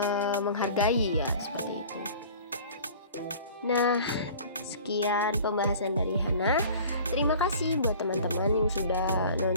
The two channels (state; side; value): inverted; both; correlation -0.44